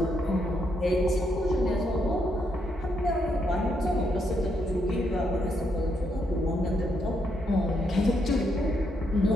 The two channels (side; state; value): both; normal; correlation 0.77